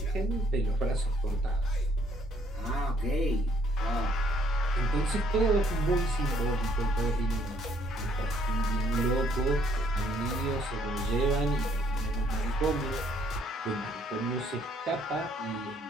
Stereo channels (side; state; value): both; normal; correlation 0.66